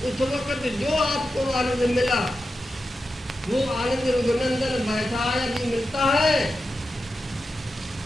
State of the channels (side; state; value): both; normal; correlation 0.90